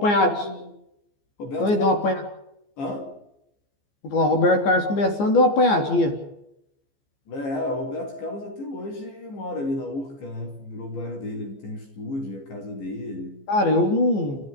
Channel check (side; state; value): right; late; 14 ms